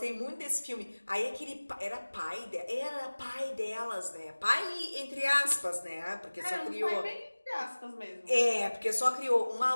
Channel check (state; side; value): inverted; both; correlation -1.00